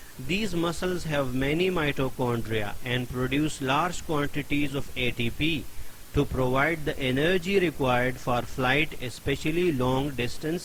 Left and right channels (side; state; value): both; identical; correlation 1.00